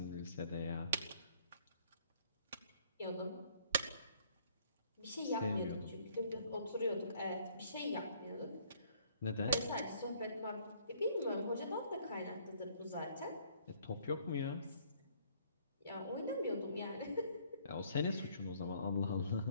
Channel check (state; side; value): inverted; both; correlation -0.62